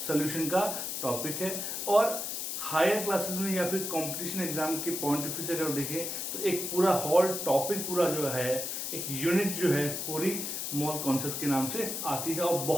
सोल्यूशन का टॉपिक है। और हायर क्लासेस में या फिर कंपटीशन एग्जाम के पॉइंट ऑफ व्यू से अगर देखें तो एक पूरा होल टॉपिक पूरा जो है एक यूनिट जो है पूरी मोल कॉन्सेप्ट के नाम से आती है और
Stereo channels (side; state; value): left; noise; hiss, 3 dB below the sound